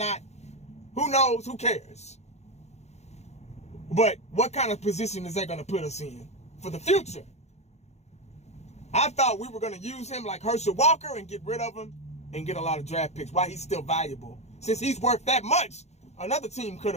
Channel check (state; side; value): late; right; 0.32 ms